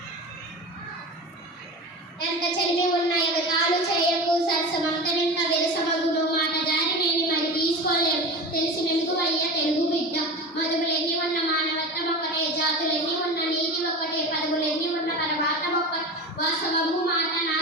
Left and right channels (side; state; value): both; normal; correlation 0.29